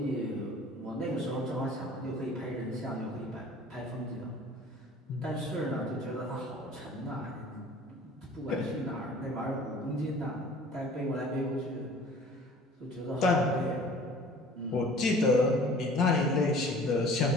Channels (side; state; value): both; normal; correlation 0.47